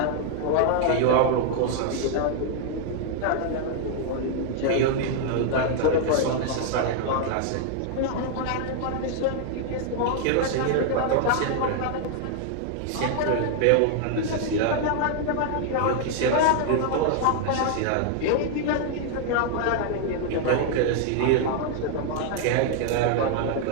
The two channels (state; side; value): different; both; correlation 0.00